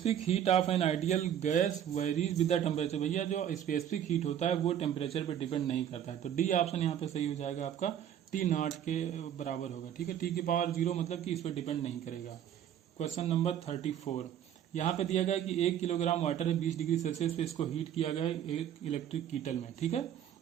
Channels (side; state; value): left; quieter; 10.0 dB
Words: heat of an ideal gas varies with the temperature, भैया जो स्पेसिफिक हीट होता है वो टेम्परेचर पे डिपेंड नहीं करता है, तो डी ऑप्शन यहाँ पे सही हो जाएगा आपका, T0 के बराबर होगा, ठीक है, T⁻0 मतलब कि इस पर डिपेंड नहीं करेगा। क्वेश्चन नंबर 34, यहाँ पे दिया गया है कि 1 किलोग्राम वाटर है 20 डिग्री सेल्सियस पे इसको हीट किया गया है एक इलेक्ट्रिक कीटल में, ठीक है,